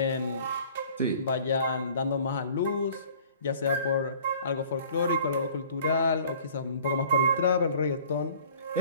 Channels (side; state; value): both; inverted; correlation -0.51